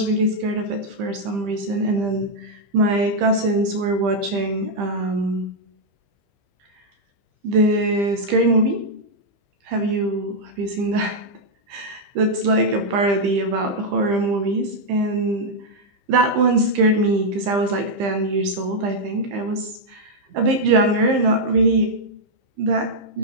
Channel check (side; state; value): left; late; 15 ms